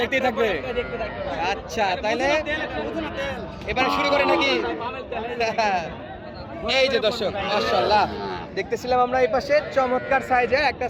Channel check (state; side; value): identical; both; correlation 1.00